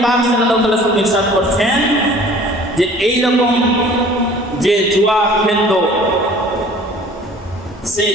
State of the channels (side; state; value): both; normal; correlation 0.49